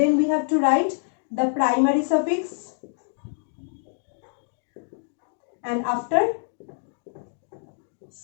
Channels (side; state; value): right; silent; digital silence